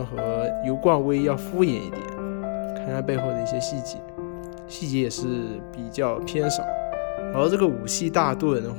和油罐威要敷衍一点，看它背后的一些细节也是比较偏少。然后这个武器大盾的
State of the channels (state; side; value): silent; right; digital silence